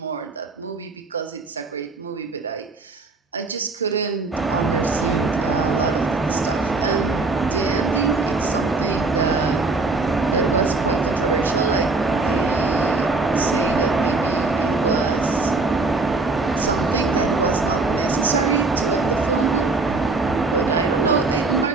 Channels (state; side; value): quieter; left; 3.6 dB